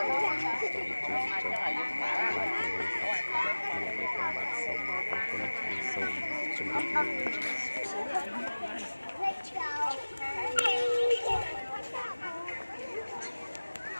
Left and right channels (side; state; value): both; inverted; correlation -1.00